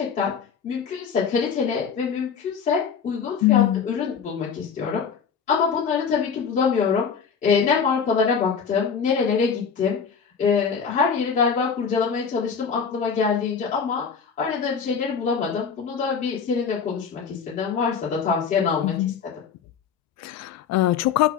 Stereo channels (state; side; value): quieter; right; 6.4 dB